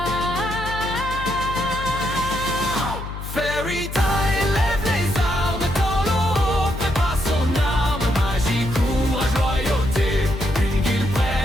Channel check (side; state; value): left; noise; hum, 8 dB below the sound